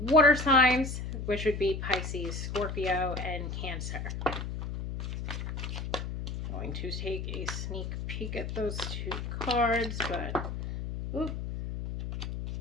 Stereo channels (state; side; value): noise; left; hum, 5 dB below the sound